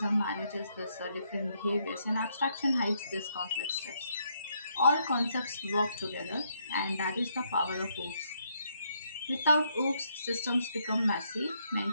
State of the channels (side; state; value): both; inverted; correlation -0.74